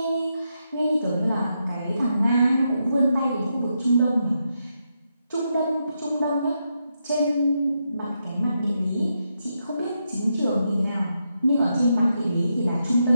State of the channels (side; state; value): both; inverted; correlation -0.83